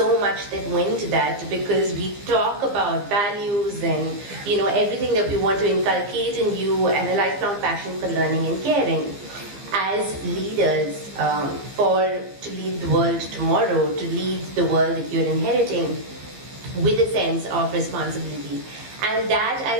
much that went to that, because we talk about values and everything that we want to inculcate in you, and a lifelong passion for learning and caring. As leaders, to lead the world tomorrow, to lead the world that you're inheriting with a sense of responsibility. And that,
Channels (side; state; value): left; late; 15 ms